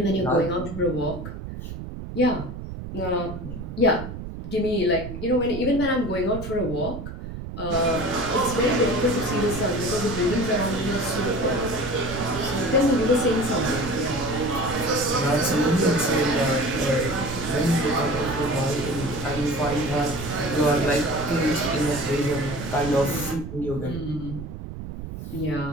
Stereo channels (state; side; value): noise; right; rumble, 9 dB below the sound